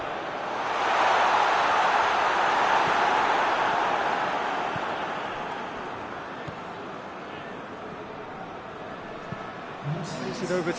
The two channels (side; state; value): both; identical; correlation 1.00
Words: Plays it over